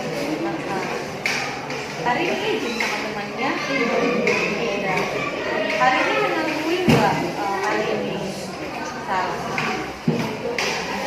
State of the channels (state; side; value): identical; both; correlation 1.00